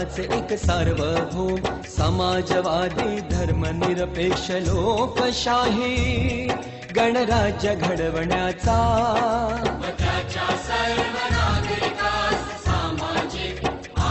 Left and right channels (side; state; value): both; identical; correlation 1.00